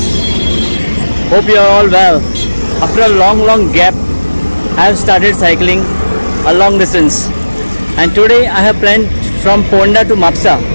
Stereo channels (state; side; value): inverted; both; correlation -1.00